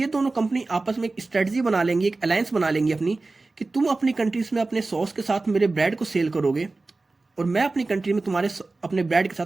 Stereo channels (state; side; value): quieter; left; 3.4 dB